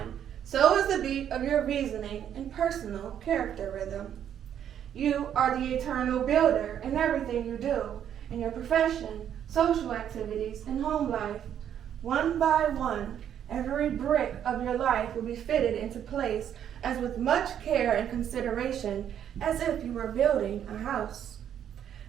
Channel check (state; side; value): quieter; left; 9.6 dB